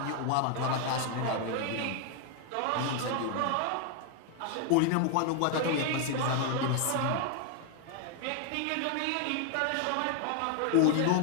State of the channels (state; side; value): different; both; correlation 0.00